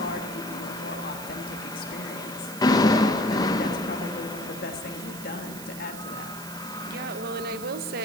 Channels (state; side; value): noise; right; hiss, 12 dB below the sound